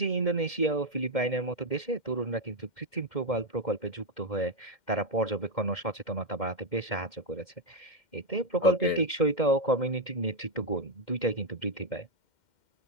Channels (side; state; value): right; late; 2.1 ms